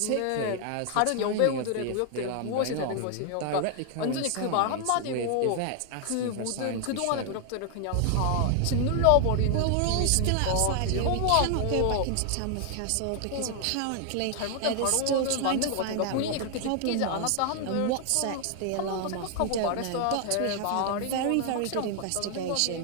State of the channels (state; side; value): different; both; correlation 0.00